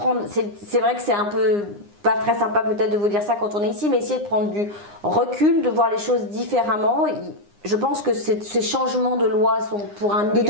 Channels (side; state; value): left; late; 9.8 ms